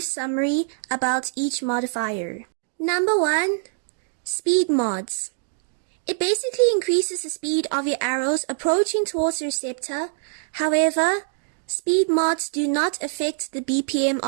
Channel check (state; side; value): silent; left; digital silence